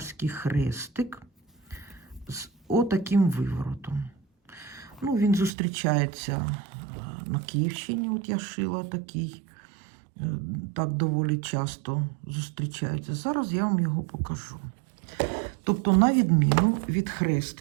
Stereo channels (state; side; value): drops out; left; at 5.5 s